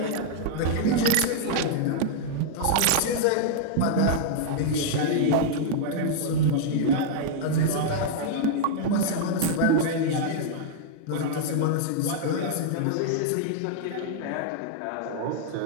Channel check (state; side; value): different; both; correlation -0.01